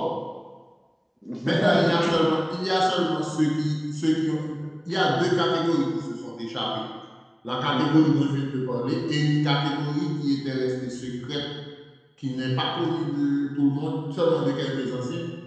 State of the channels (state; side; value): identical; both; correlation 1.00